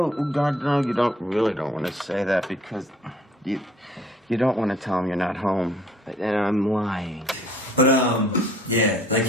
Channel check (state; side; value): normal; both; correlation 0.57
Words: God, no, you really don't want to say that because you don't want to tell him you're not home. And I'm lying. But yeah, like